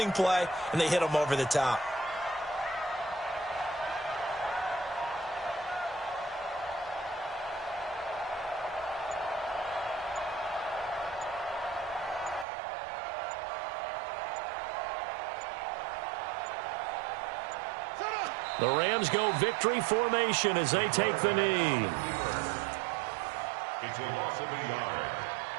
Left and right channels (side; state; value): left; drops out; at 12.5 s